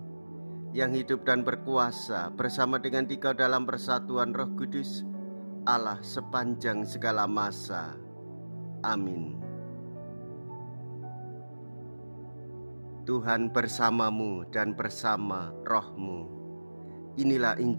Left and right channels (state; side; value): inverted; both; correlation -1.00